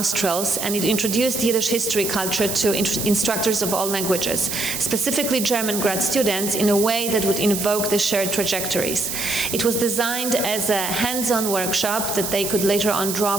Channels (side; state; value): right; noise; hiss, 4 dB below the sound